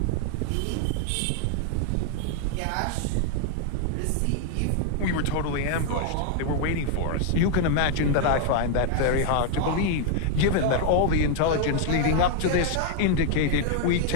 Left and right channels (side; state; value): both; different; correlation 0.00